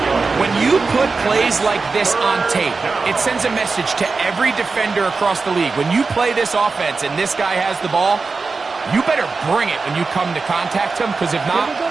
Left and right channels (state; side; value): quieter; left; 4.3 dB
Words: When you put plays like this on tape, it sends a message to every defender across the league. When you play this offense and this guy has the ball, you better bring it when you come to contact him, because if not,